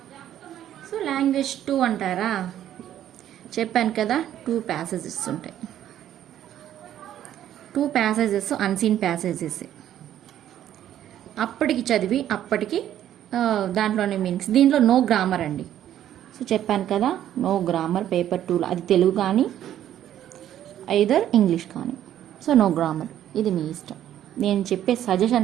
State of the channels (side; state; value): left; quieter; 11.4 dB